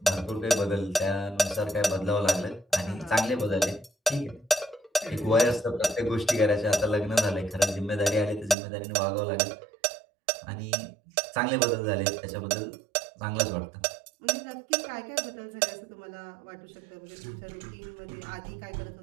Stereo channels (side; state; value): left; drops out; at 8.6 s